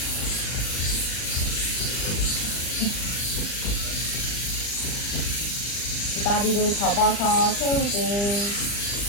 두 다리를 접어서 세우고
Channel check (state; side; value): late; right; 40 ms